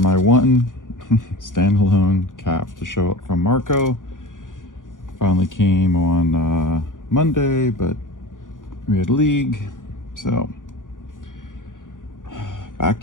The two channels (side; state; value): right; late; 0.88 ms